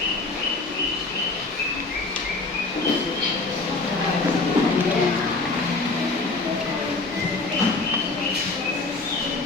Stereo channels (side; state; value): right; quieter; 3.5 dB